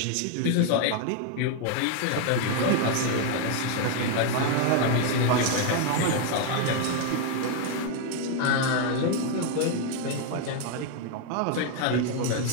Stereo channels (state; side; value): different; both; correlation 0.01